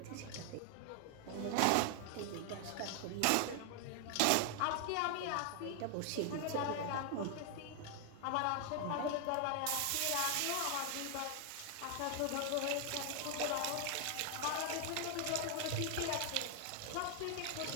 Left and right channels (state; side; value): different; both; correlation 0.00